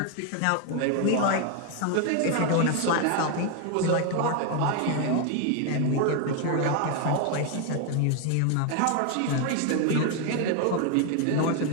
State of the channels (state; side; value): different; both; correlation 0.01